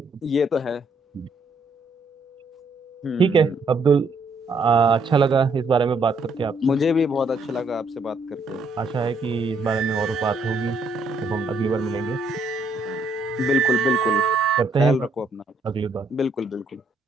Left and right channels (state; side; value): quieter; left; 3.0 dB